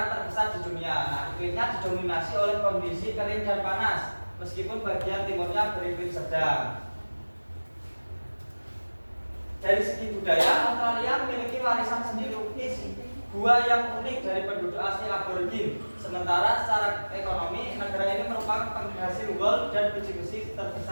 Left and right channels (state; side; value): inverted; both; correlation -1.00